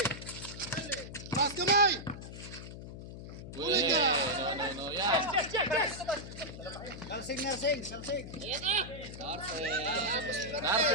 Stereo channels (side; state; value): left; noise; hum, 11 dB below the sound